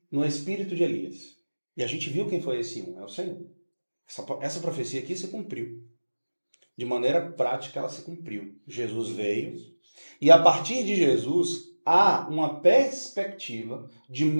no espírito de Elias. E a gente viu quem foi esse é o Senhor. Essa profecia aqui se cumpriu. De maneira prática, ela se cumpriu. Jesus veio, e a partir de Jesus, há uma perspectiva de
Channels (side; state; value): both; inverted; correlation -1.00